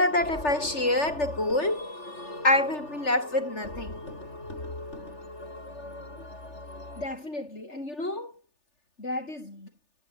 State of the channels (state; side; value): late; right; 3.4 ms